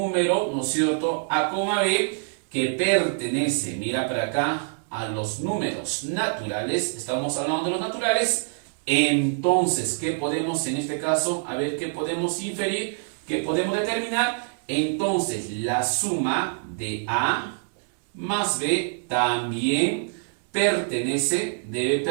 ¿no es cierto?, A, B, que pertenece, mira para acá, a los números naturales, estamos hablando de los naturales, entonces, ¿qué podemos en este caso? A ver, ¿qué podemos inferir? ¿Qué podemos determinar? Entonces, la suma de A más B también debe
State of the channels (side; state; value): left; silent; digital silence